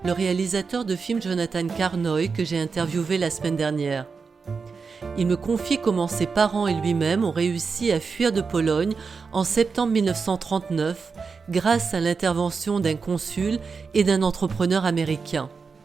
le réalisateur de films Jonathan Carnoy, que j'ai interviewé la semaine dernière. Il me confie comment ses parents et lui-même ont réussi à fuir de Pologne en septembre 1939 grâce à l'intervention d'un consul et d'un entrepreneur américain.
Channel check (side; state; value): left; quieter; 5.1 dB